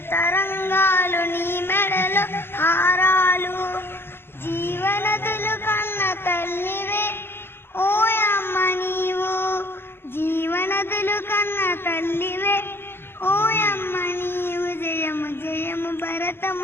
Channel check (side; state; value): right; late; 0.11 ms